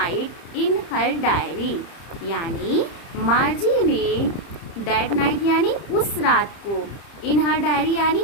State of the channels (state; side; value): late; right; 30 ms